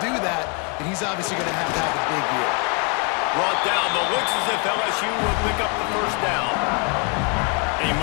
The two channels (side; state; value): right; quieter; 34.0 dB